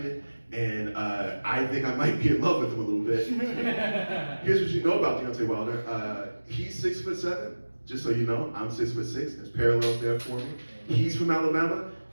And I think I might be in love with him a little bit. Here's what you know about Deontay Wilder. He's 6'7", just so you know. I'm 6'6". There's parallels there for me. He's from Alabama.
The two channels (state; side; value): inverted; both; correlation -1.00